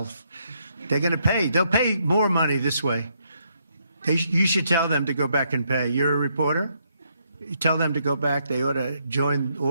They're going to pay. They'll pay more money this way. You should tell them to go back and pay. You're a reporter? You tell them to go back. They ought to join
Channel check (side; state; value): both; inverted; correlation -0.75